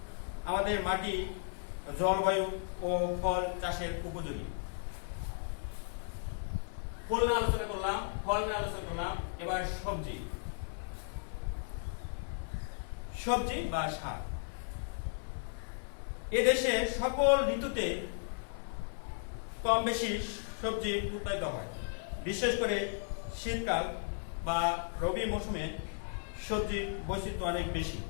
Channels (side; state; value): right; silent; 54 dB below the other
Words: আমাদের মাটি, জলবায়ু ও ফল চাষের উপযোগী। ফুল নিয়ে আলোচনা করলাম, ফল নিয়ে আলোচনা করলাম। এবার সবজি। সবজি বা শাক। এদেশে সকল ঋতুতে কম বেশি সবজি উৎপাদিত হয়। বিশেষ করে শীতকাল বা রবি মৌসুমে সবজির বৈচিত্র্য অনেক বেশি।